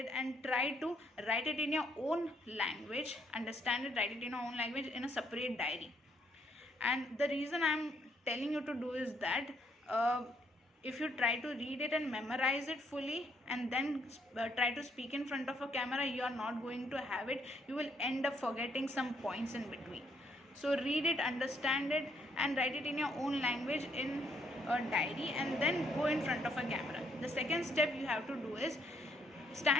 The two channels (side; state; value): both; normal; correlation 0.71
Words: and try to write it in your own language, understand it, write it in your own language in a separate diary. And the reason I'm telling you to do is that if you try to read it and memorize it fully and then try to speak in front of a camera, you are not going to have it. You will end up forgetting some points in between. So read it, understand it, and write it in your own language in a diary, and then go in front of a camera. The second step you have to do is